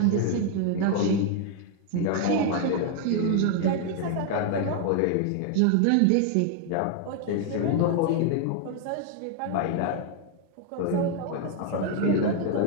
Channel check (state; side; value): different; both; correlation 0.00